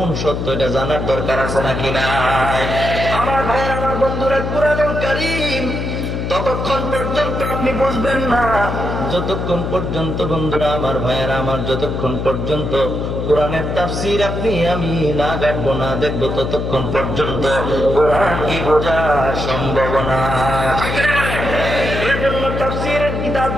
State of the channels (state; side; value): noise; left; hum, 3 dB below the sound